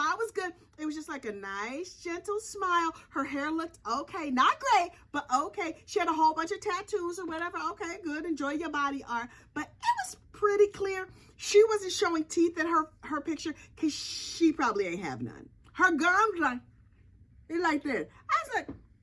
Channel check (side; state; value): both; identical; correlation 1.00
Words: was good. It was just like a nice, gentle smile. Her hair looked okay. Not great, but okay. She had a whole bunch of tattoos or whatever. Okay, good. Enjoy your body art. But it was pretty clear. She wasn't showing teeth in her picture because she probably ain't have none. Her gums like this. I was like,